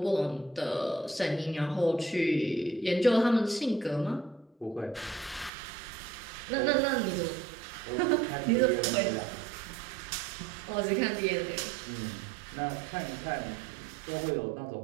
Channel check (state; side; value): drops out; left; at 5.5 s